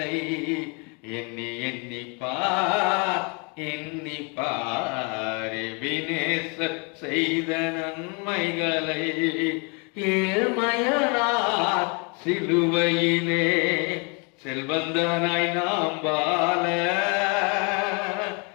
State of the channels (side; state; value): right; quieter; 33.6 dB